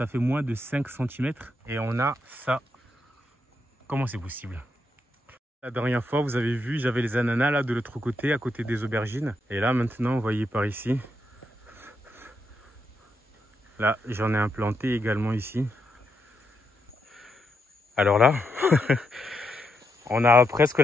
fait moins de 5 cm. Et on a ça. Comment c'est possible ? La dernière fois, vous avez vu, j'avais les ananas là de l'autre côté, à côté des aubergines. Et là, maintenant, vous voyez par ici. Là, j'en ai implanté également ici. Alors là, on a presque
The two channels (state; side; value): normal; both; correlation 0.81